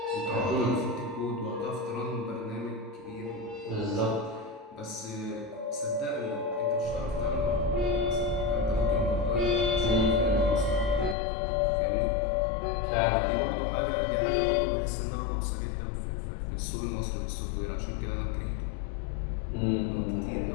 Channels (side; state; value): right; drops out; at 11.2 s